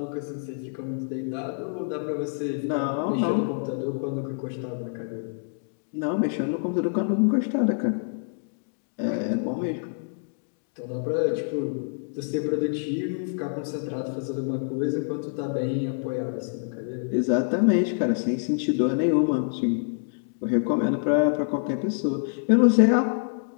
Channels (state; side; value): silent; right; digital silence